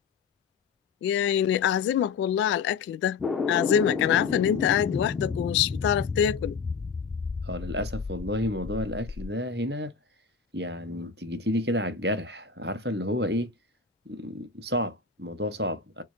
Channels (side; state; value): right; quieter; 5.8 dB